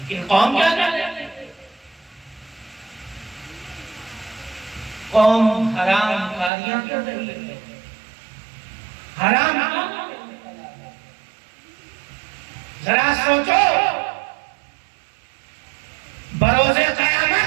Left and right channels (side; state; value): left; drops out; at 6.5 s